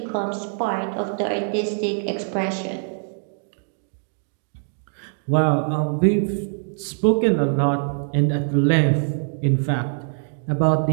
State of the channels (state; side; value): silent; left; digital silence